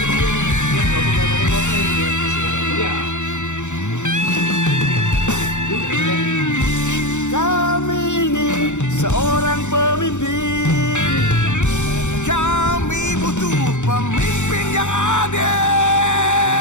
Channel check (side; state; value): right; late; 0.84 ms